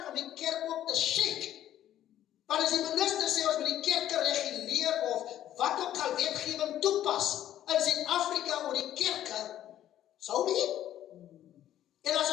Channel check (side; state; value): right; quieter; 11.9 dB